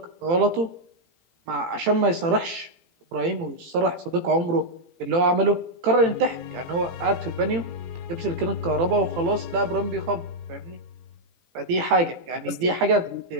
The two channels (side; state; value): left; late; 18 ms